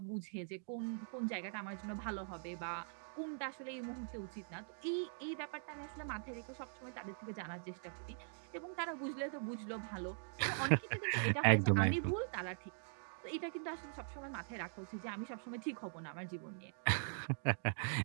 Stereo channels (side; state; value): left; silent; digital silence